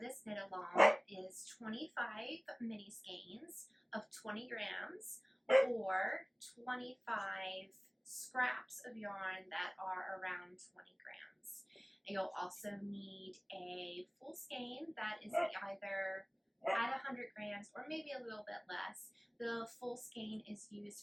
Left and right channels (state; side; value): identical; both; correlation 1.00